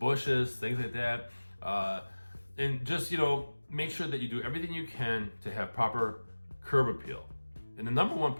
things like that. And just, make sure that you do everything you can to have proper curb appeal. And the number one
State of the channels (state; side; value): inverted; both; correlation -1.00